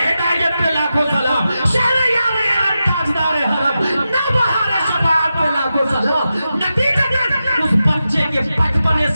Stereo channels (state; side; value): inverted; both; correlation -0.90